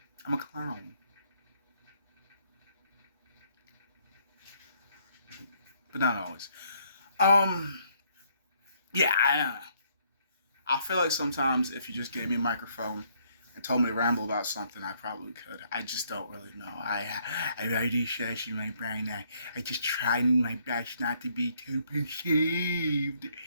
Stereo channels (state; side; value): inverted; both; correlation -0.68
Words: I'm a clown. But not always. Yeah, I feel like sometimes if you just gave me a microphone and told me to ramble about something, I probably could. I just don't really know. I already said in my brain, I just try my best not to be too perceived.